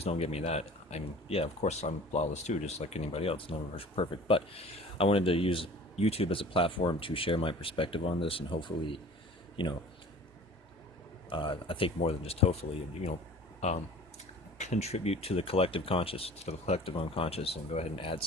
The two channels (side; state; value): both; normal; correlation 0.44